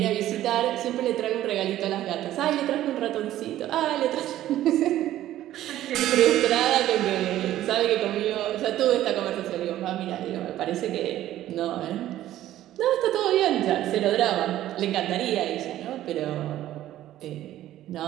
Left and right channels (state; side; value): quieter; left; 13.4 dB